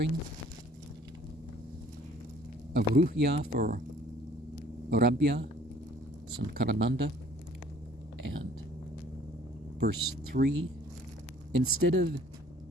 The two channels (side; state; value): both; normal; correlation 0.55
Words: Avruhya for Rabya, Sankarananda, and verse 3, instead of